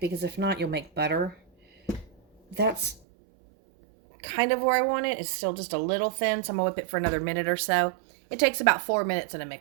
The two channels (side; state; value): left; drops out; at 3.0 s